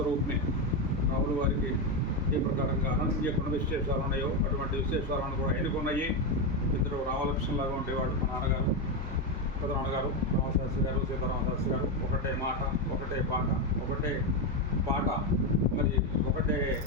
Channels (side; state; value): both; normal; correlation 0.09